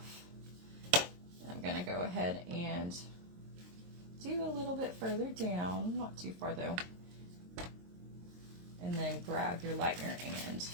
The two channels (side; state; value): left; late; 23 ms